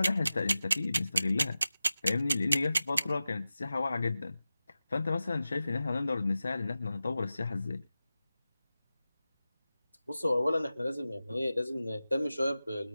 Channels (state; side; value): inverted; both; correlation -0.94